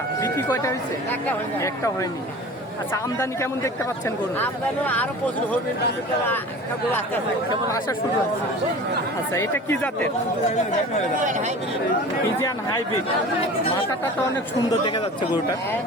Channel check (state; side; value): normal; both; correlation 0.39